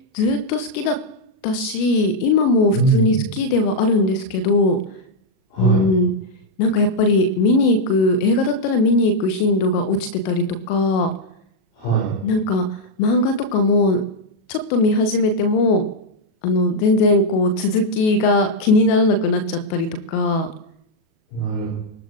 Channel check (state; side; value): late; right; 37 ms